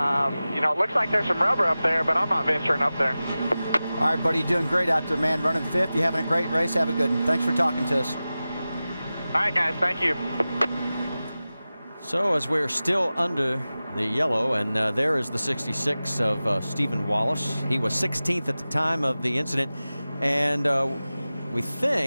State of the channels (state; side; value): inverted; both; correlation -0.96